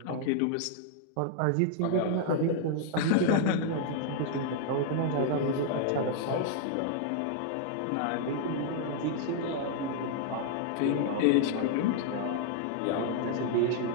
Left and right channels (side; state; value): both; different; correlation 0.00